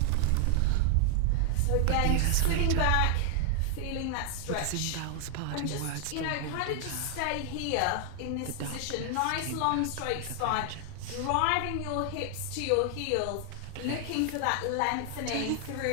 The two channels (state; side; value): different; both; correlation 0.00